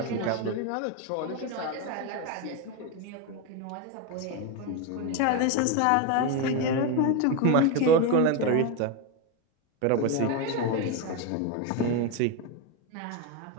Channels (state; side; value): different; both; correlation 0.03